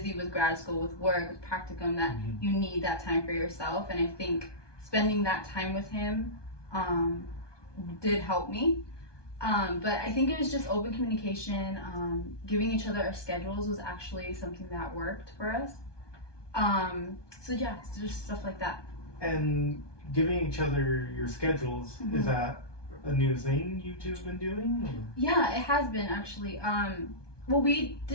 with grad school, with work, with practicum, that you need that time for yourself. And I think spending that time with him did help me. But I think it was just open communication. Giving each other our schedules was actually something that worked for us. So yeah, it's just stuff like that. And giving each other your schedules, is that a new thing you two have been doing? Or? Yeah, it has been actually. Well, we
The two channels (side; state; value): right; late; 1.2 ms